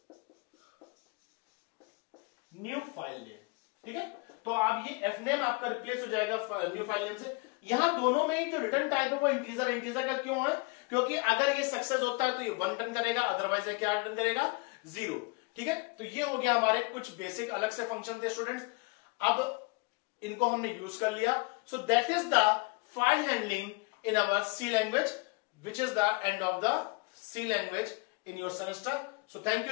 new file name. ठीक है, तो अब ये एफ नेम आपका रिप्लेस हो जाएगा न्यू फाइल नेम से। यहां दोनों में ही जो रिटर्न टाइप है वो इंटीजर। इंटीजर का क्यों है? क्योंकि अगर ये सक्सेस होता है तो ये 1 रिटर्न करेगा, अदरवाइज ये क्या रिटर्न करेगा? 0। ठीक है, तो ये हो गया हमारे कुछ बेसिक अलग से फंक्शन थे स्टूडेंट्स। अब इनको हमने यूज कर लिया। So that is the file handling in our C language, which is the end of the C language in your semester. So thank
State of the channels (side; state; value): right; quieter; 29.5 dB